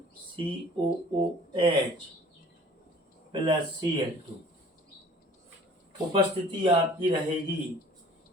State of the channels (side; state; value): both; normal; correlation 0.50